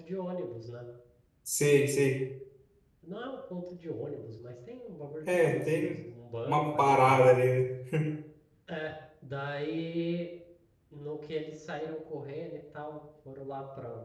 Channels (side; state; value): both; identical; correlation 1.00